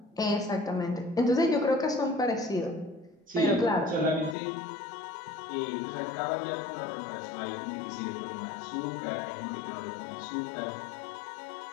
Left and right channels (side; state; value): right; drops out; at 4.4 s